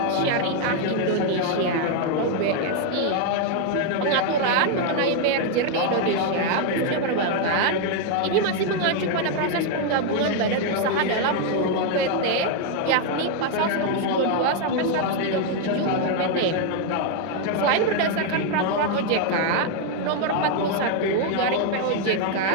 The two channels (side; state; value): both; different; correlation 0.01